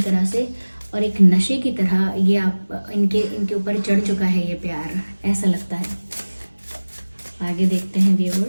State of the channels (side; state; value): both; inverted; correlation -1.00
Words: तरह से और एक नशे की तरह ये आप इनके ऊपर चढ़ चुका है ये प्यार, ऐसा लगता है. आगे देखते हैं